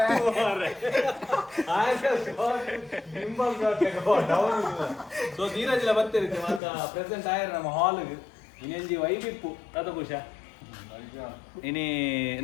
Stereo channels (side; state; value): right; drops out; at 6.6 s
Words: ಸೊ ಧೀರಜಿಲ ಬರ್ತಿರುತ್ತೆ ಮಾತ ಪ್ರೆಸೆಂಟ್ ಆಯ್ರ ನಮ್ಮ ಹಾಲ್ಗೆ ಇನ್ನೆಂಜಿ ವೈಬಿಪ್ಪು ತಾತ ಖುಷ ಇನಿ